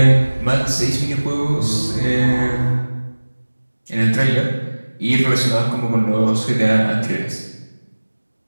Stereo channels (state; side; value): inverted; both; correlation -1.00